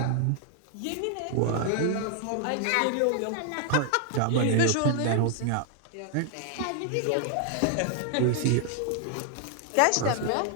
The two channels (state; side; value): different; both; correlation 0.00